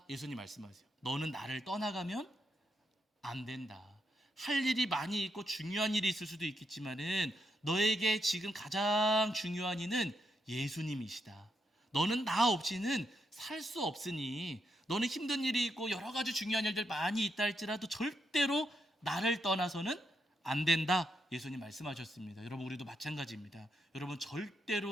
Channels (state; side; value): normal; both; correlation 0.81